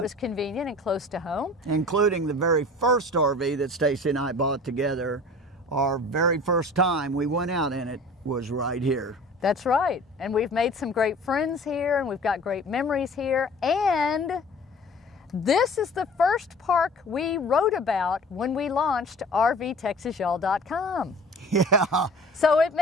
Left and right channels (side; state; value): both; normal; correlation 0.44